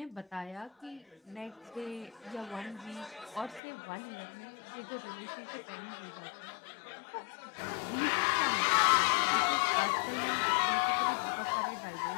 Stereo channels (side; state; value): right; drops out; at 3.6 s